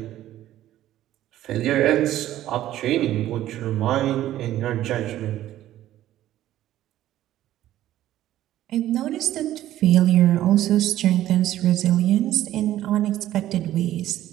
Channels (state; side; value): quieter; left; 13.4 dB